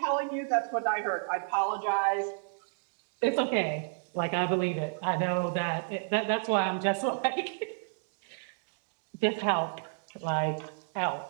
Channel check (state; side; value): silent; left; digital silence